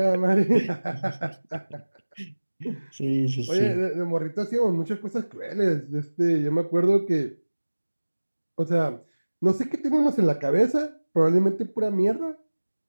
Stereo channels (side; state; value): both; inverted; correlation -1.00